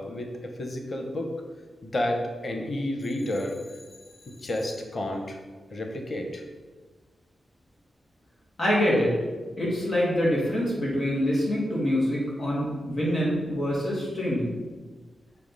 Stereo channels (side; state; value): both; normal; correlation 0.87